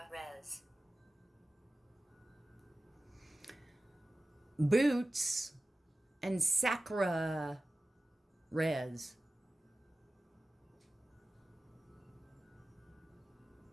Res. Boots and Sacra Res.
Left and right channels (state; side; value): normal; both; correlation 0.96